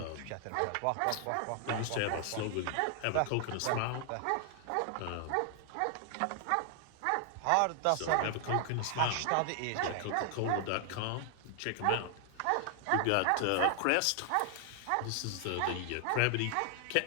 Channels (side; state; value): both; different; correlation 0.00